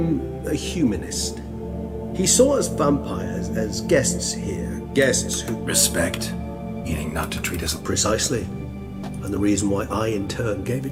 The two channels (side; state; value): both; identical; correlation 1.00